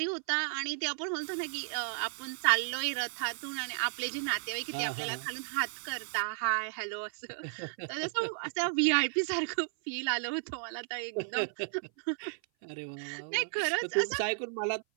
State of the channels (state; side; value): silent; left; 55 dB below the other